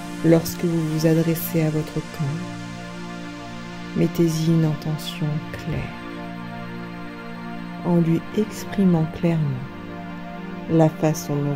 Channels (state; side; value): identical; both; correlation 1.00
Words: Lorsque vous vous adressez à votre corps, mettez-y une intention claire, en lui exprimant clairement la façon dont